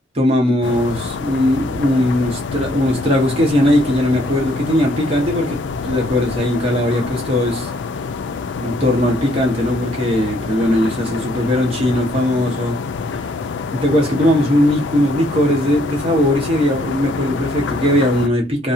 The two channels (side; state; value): both; normal; correlation 0.67